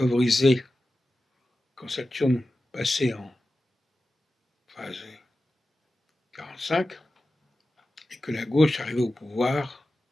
quand Saturne passait en phase 45 et que la gauche arrivait au pouvoir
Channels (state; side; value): normal; both; correlation 0.93